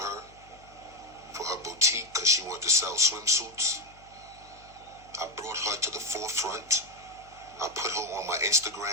boutique, because she wanted to sell swimsuits. I brought her to the forefront. I put her on my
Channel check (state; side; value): noise; left; hum, 25 dB below the sound